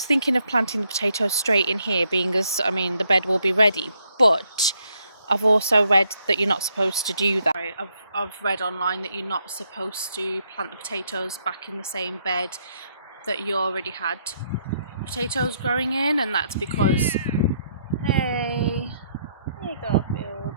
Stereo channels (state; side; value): inverted; both; correlation -0.73